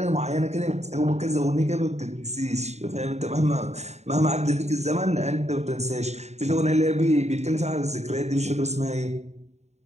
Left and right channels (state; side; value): late; left; 0.32 ms